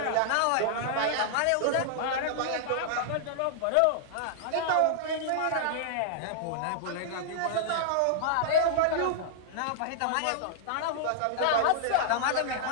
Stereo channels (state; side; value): different; both; correlation -0.01